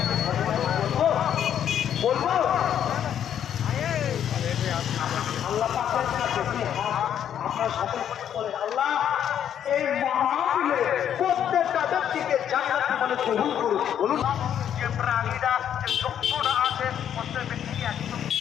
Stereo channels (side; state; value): right; quieter; 9.6 dB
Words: বলবো আল্লাহ পাকের কাছে কি আপনার সকল বলেন, আল্লাহ এই মাহফিলে প্রত্যেকটা ব্যক্তিকে জান্নাতি বলে কবুল করুন। বলুন, যে প্রাণীরা যে চক্ষুটা আছে প্রত্যেক ব্যক্তি একদম